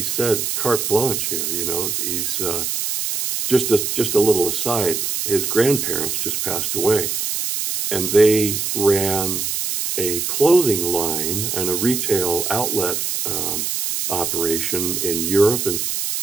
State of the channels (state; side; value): noise; right; hiss, 1 dB below the sound